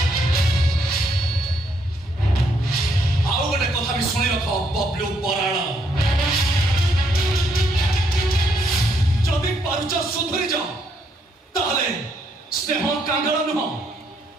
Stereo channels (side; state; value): both; normal; correlation 0.73